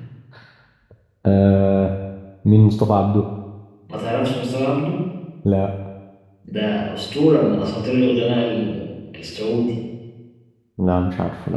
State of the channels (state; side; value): identical; both; correlation 1.00